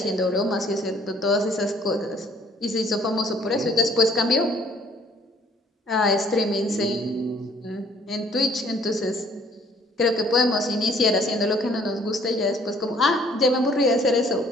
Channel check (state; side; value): normal; both; correlation 0.59